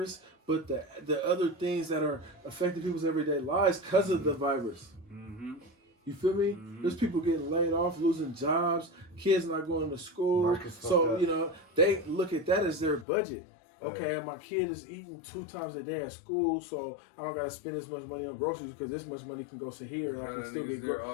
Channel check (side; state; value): right; drops out; at 13.1 s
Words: but the other things that are affecting people's everyday lives because of the virus. Mm-hmm. You feel me? There's people getting laid off, losing jobs, kids not going to school. So, they look at that as their budget. Okay, my kid is eating 2 times a day at school, so I don't got to spend this much money on groceries because this much money can go to here and I can still get